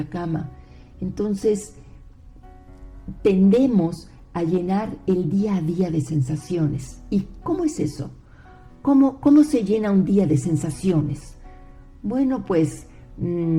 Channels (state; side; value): identical; both; correlation 1.00